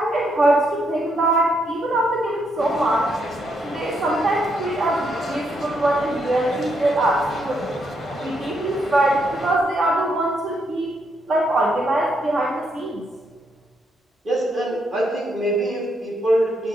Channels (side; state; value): both; normal; correlation 0.77